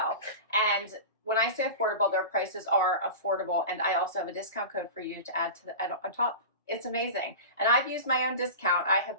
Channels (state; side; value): inverted; both; correlation -0.30